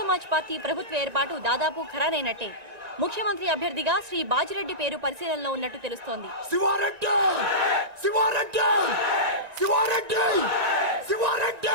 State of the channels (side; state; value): left; late; 1.9 ms